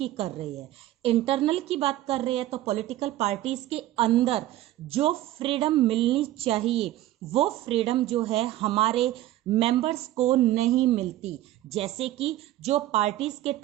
कर रहे हैं। इंटरनल की बात कर रहे हैं तो पॉलिटिकल पार्टीज के अंदर जो फ्रीडम मिलनी चाहिए वो फ्रीडम जो है हमारे मेंबर्स को नहीं मिलती। जैसे कि जो पार्टीज के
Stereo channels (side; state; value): left; quieter; 14.6 dB